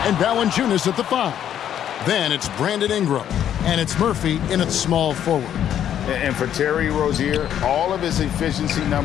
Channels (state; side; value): quieter; right; 10.1 dB